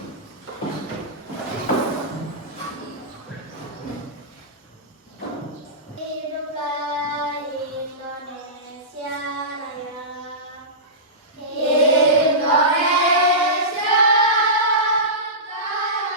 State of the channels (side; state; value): both; normal; correlation -0.19